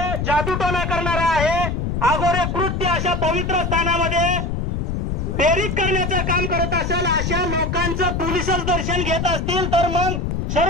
जादूटोना करणारा आहे आघोरे कृत्य अशा पवित्र स्थानामध्ये प्रेरित करण्याचं काम करत असेल अशा लोकांचं पोलिसच दर्शन घेत असतील तर मग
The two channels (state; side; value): noise; left; rumble, 1 dB below the sound